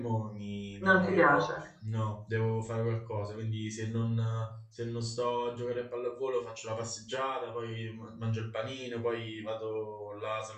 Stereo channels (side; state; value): both; identical; correlation 1.00